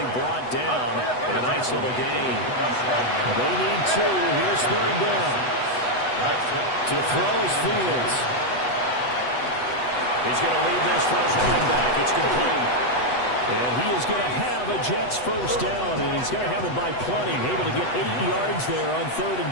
brought down in a nice little gain. They need 2. Here's 3rd down. To throw is Fields. He's going to leave this for his running back. It's complete. And he is going to have a Jets 1st down, and he's going to have it by plenty. Able to get 8 yards there on 3rd and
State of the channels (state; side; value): late; right; 8.0 ms